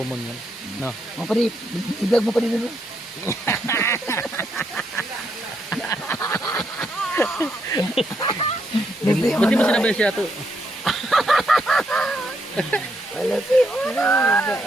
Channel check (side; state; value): both; normal; correlation 0.77